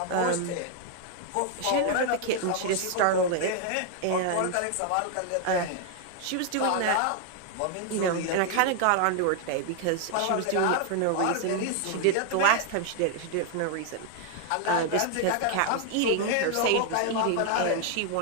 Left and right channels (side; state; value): both; different; correlation 0.00